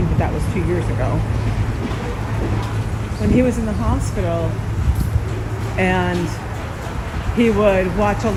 that that was 2 years ago. When he was in the hospital and he would watch a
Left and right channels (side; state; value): both; identical; correlation 1.00